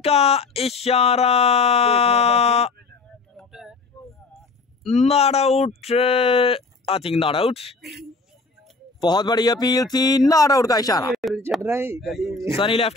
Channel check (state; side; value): quieter; right; 3.8 dB